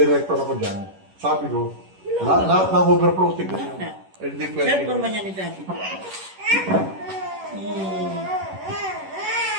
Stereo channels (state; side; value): late; left; 11 ms